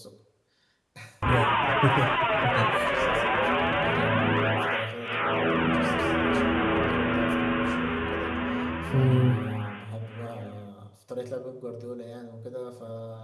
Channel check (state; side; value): identical; both; correlation 1.00